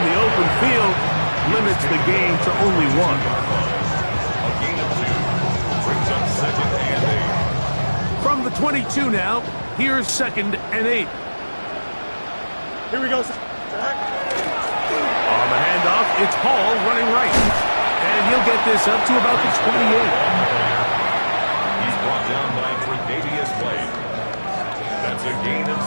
the open field limits the game to only 1. A gain of 2 brings up second and 8. From the 22 now, here's second and 8. Here we go. On the handoff, it's Hall running right. And he'll get this up to about the 28. He's brought down by Tre'Davious White. That's a gain of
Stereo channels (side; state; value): both; inverted; correlation -1.00